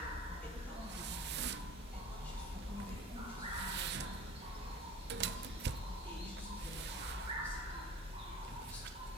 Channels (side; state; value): both; normal; correlation 0.42